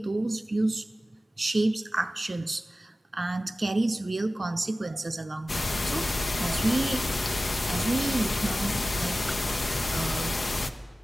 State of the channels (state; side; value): normal; both; correlation 0.95